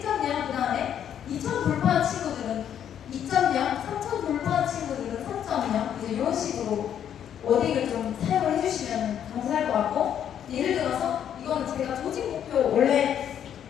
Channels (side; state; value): right; quieter; 9.5 dB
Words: 그 다음에 2000 돌파한 친구들은 2.0, 3000 돌파한 친구들은 3.0 이제 이런 식으로 워딩을 좀 사용을 해주시면 감사할 것 같고, 예를 들어서 이거는 제가 조직 목표 원래